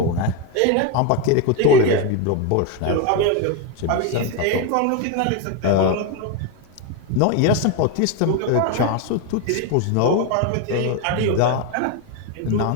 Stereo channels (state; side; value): different; both; correlation 0.02